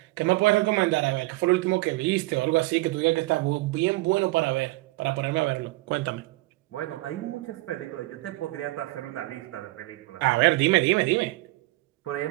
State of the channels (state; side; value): quieter; left; 20.5 dB